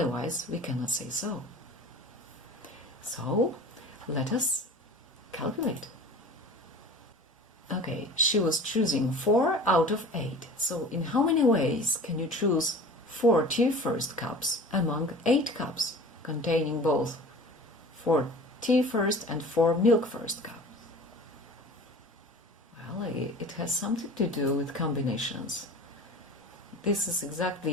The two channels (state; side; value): normal; both; correlation 0.40